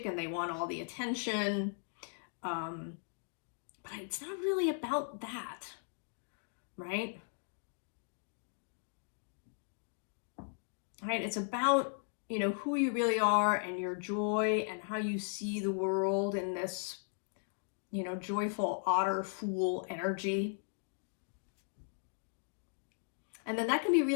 and they want all the attention. But it's not really about that, right? Right? It's about, who you really are and your joy and how you see the world in this, joyful otter fool energy. And then that can be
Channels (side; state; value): right; silent; digital silence